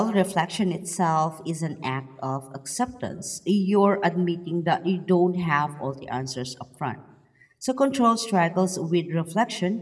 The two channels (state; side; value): identical; both; correlation 1.00